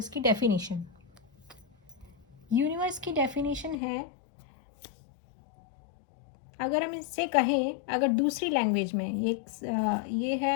की डेफिनेशन। यूनिवर्स की डेफिनेशन है, अगर हम इससे कहें, अगर दूसरी लैंग्वेज में ये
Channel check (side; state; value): right; drops out; at 3.8 s